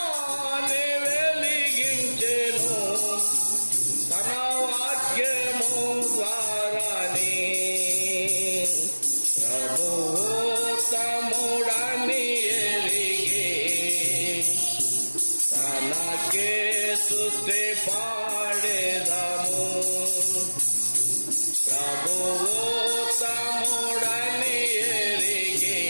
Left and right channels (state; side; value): inverted; both; correlation -1.00